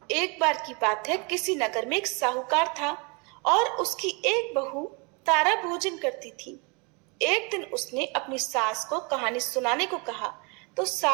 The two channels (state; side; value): quieter; left; 31.2 dB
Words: एक बार की बात है, किसी नगर में एक साहूकार था और उसकी एक बहू तारा भोजन करती थी। एक दिन उसने अपनी सास को कहानी सुनाने को कहा तो